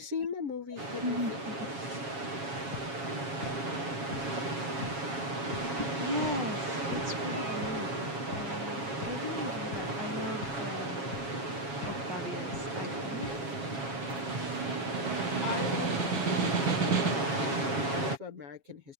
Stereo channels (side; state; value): left; late; 7.3 ms